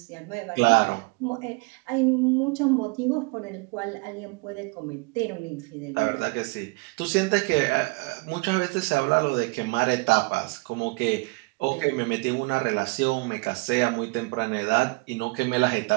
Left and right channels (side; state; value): left; quieter; 28.5 dB